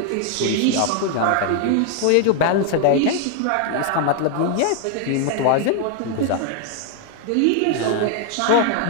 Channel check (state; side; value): different; both; correlation 0.00